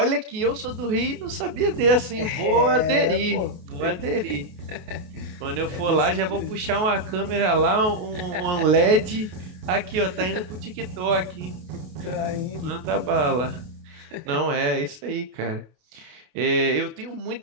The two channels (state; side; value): late; left; 28 ms